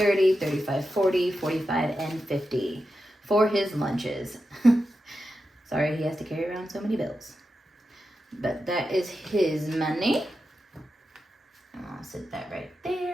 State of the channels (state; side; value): normal; both; correlation 0.90